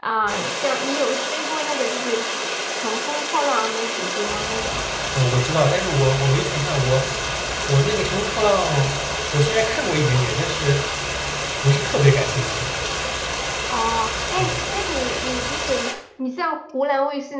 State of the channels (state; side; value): identical; both; correlation 1.00